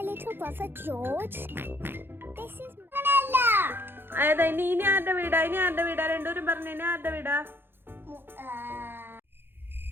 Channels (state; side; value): late; left; 0.10 ms